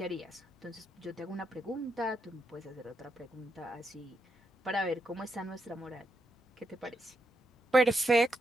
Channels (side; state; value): both; normal; correlation 0.82